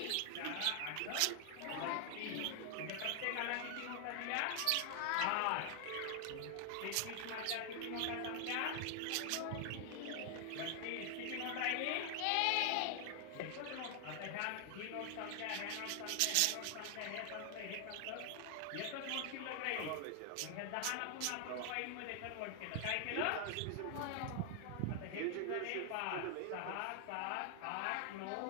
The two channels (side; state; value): both; different; correlation 0.00